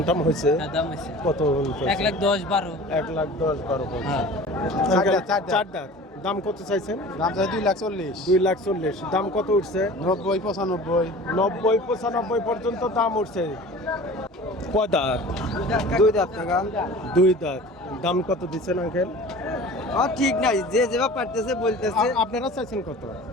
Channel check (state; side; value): normal; both; correlation 0.41